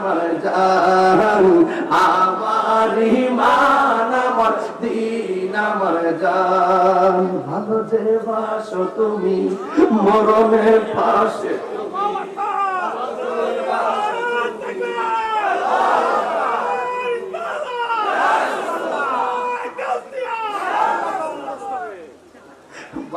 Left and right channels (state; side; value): identical; both; correlation 1.00